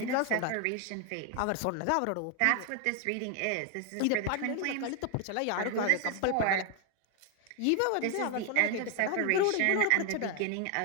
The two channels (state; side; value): different; both; correlation 0.01